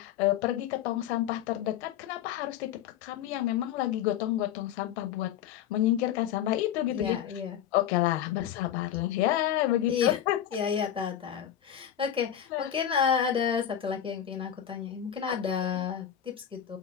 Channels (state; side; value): quieter; right; 10.3 dB